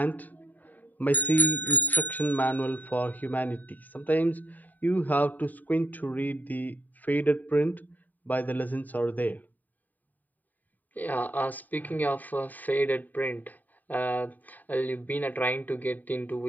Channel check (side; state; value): right; late; 0.083 ms